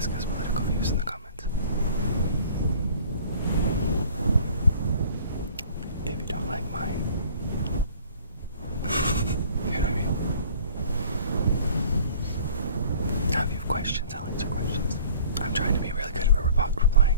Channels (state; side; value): inverted; both; correlation -0.49